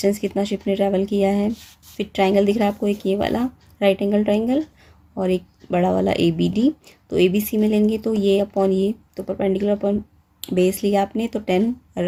कितना शिप ने ट्रैवल किया है। फिर ट्राइंगल दिख रहा है आपको, एक ये वाला राइट एंगल ट्राइंगल, और एक बड़ा वाला ABD। तो ABC में लेंगे तो ये अपॉन ये, तो परपेंडिकुलर अपॉन बेस लिया आपने, तो 10, और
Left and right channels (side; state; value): both; identical; correlation 1.00